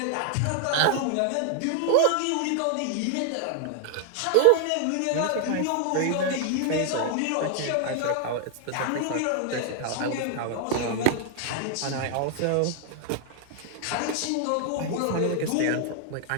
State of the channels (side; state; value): both; different; correlation 0.00